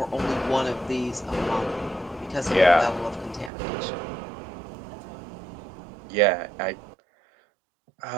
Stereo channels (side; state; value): left; drops out; at 3.5 s